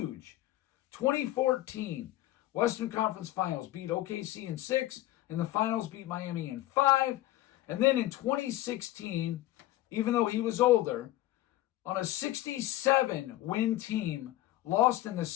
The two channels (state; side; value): quieter; right; 15.6 dB